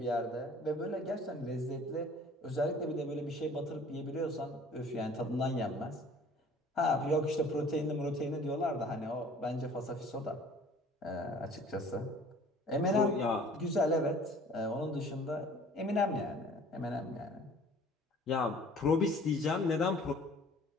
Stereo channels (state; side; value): normal; both; correlation 0.50